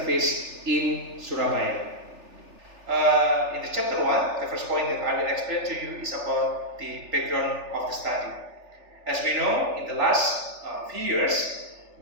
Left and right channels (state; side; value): late; left; 3.4 ms